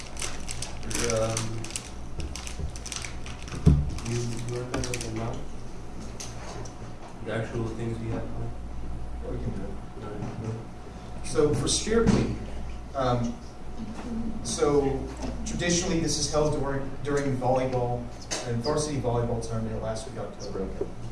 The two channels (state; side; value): identical; both; correlation 1.00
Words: You remember them now? The actual things we have planned? Yeah, we can do it. So for Spirit Week, so traditionally this is held during volleyball and varsity volleyball tournament last week, October.